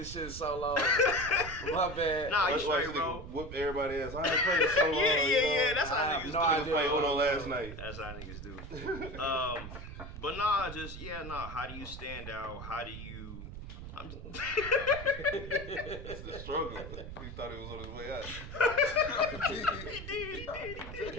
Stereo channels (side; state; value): right; noise; rumble, 10 dB below the sound